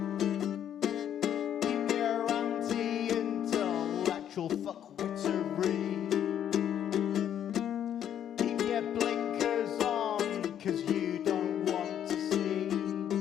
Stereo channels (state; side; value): quieter; right; 9.9 dB